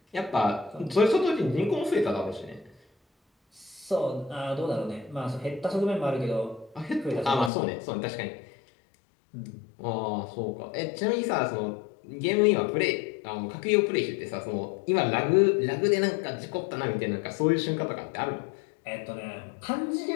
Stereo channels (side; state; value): right; drops out; at 7.5 s